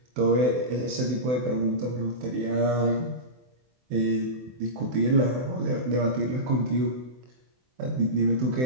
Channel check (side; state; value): left; late; 24 ms